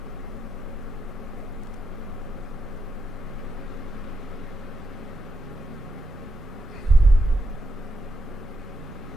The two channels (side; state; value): both; normal; correlation 0.82